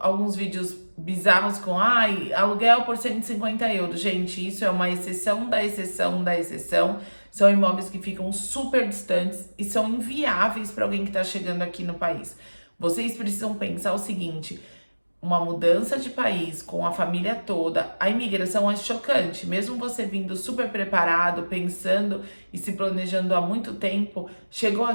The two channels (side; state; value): both; inverted; correlation -1.00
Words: vídeos bizarros com aluguel por 150 euros. Gente, isso é uma exceção da exceção da exceção. São imóveis que ficam super distantes e são inviáveis para alguém que está chegando aqui no país. Vocês precisam pensar o seguinte: uma mudança de país com a família toda, a imigração é chocante. Mesmo você vindo super preparado, pensando e se planejando há muito tempo, chegou